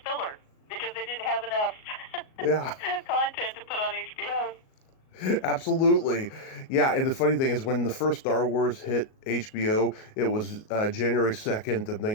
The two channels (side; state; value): right; late; 38 ms